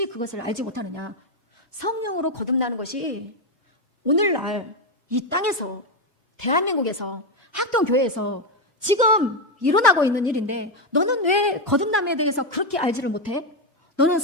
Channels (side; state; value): both; normal; correlation 0.07